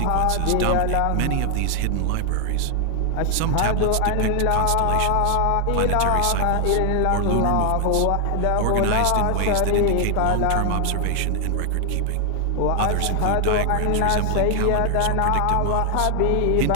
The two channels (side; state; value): both; different; correlation 0.00